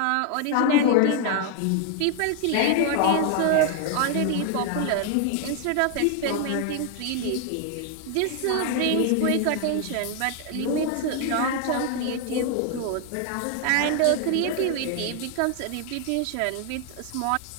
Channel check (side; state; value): both; different; correlation 0.00